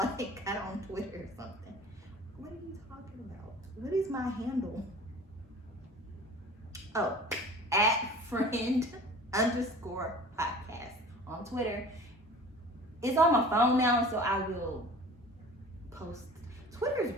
got on Twitter or something. What are you talking about? What is my handle? Oh, @friend_podcast on Twitter. It's on my phone now, so I will post. Twitter's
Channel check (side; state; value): both; normal; correlation 0.43